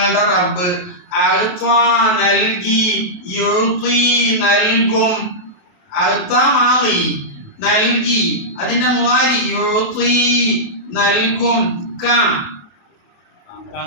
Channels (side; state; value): right; late; 28 ms